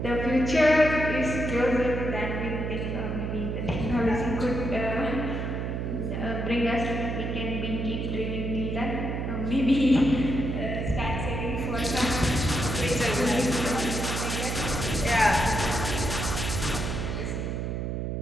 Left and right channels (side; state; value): right; noise; hum, 2 dB below the sound